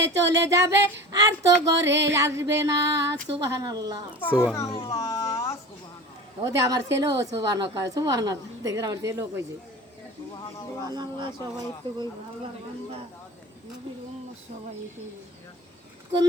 চলে যাবে আর তো ঘরে আসবে না। সুবহানাল্লাহ। সুবহানাল্লাহ। ওদের আমার ছেলেও সুবহানাল্লাহ কয়, সুবহানাল্লাহ দেখেন আমার ছেলেও কইছে সুবহানাল্লাহ। সবাই তো কই ভালো বান্দা নবীর উম্মত সবাই কই।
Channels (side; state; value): both; normal; correlation 0.35